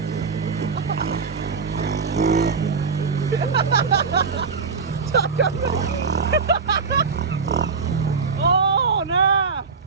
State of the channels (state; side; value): quieter; left; 5.1 dB